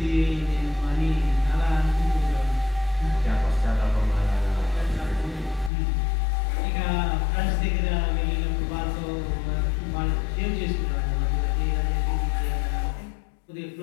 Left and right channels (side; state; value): right; drops out; at 5.7 s